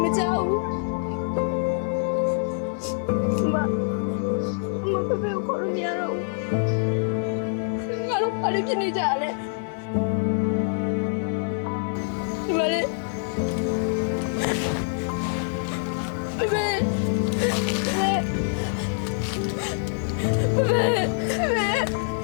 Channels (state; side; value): silent; right; 59 dB below the other